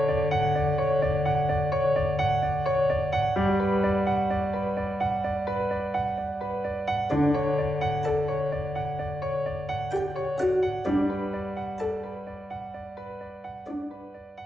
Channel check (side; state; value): both; normal; correlation 0.85